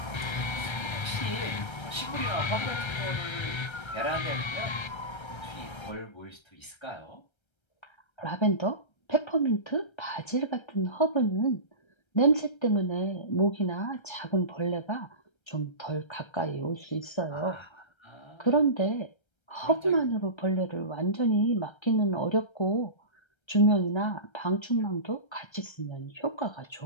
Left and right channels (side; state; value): right; late; 1.3 ms